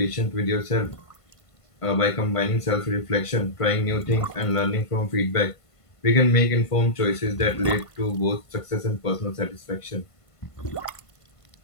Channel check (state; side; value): late; right; 1.5 ms